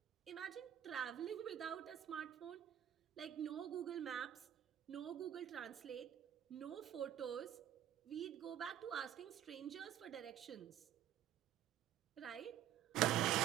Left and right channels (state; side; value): quieter; left; 10.9 dB